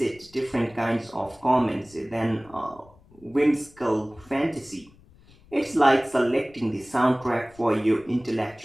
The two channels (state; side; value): noise; left; rumble, 26 dB below the sound